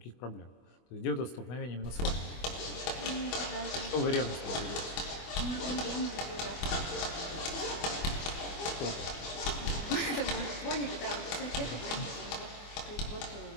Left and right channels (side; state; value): right; late; 24 ms